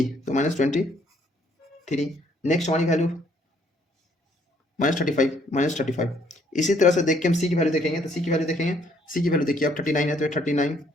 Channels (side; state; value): both; normal; correlation 0.66